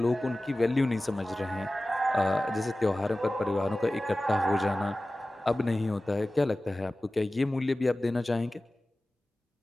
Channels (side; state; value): both; normal; correlation 0.96